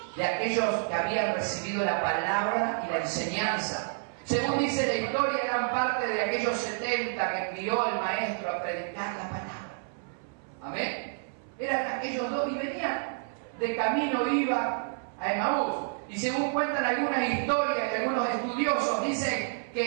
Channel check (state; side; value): silent; left; 58 dB below the other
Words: de aquellos que habían recibido la palabra y la enseñanza. Según dice la historia, eran parte de aquellos 70 que envió el maestro a predicar la palabra. Amén. Eran aquellos dos y venían de camino, iba a Emaús. Y según cuentan algunas historias de algunos estudiosos, dicen